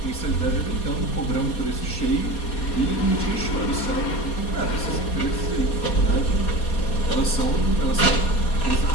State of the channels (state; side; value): late; right; 4.2 ms